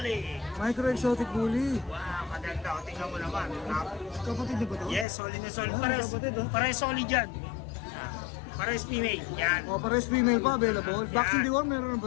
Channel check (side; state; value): right; drops out; at 5.1 s